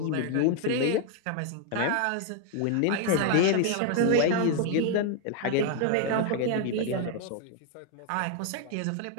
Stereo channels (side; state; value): both; different; correlation 0.00